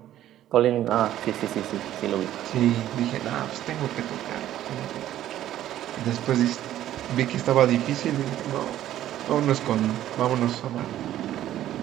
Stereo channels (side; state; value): left; quieter; 12.6 dB